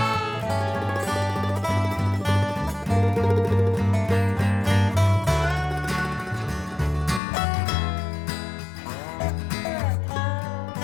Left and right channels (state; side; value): drops out; right; at 7.2 s